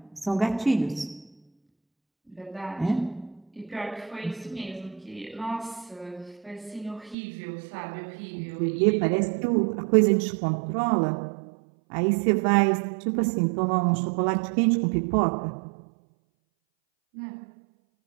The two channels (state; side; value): drops out; left; at 7.2 s